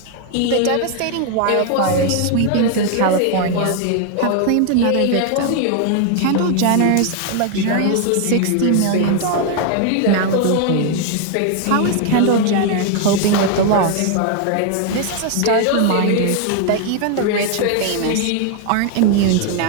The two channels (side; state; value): both; different; correlation 0.00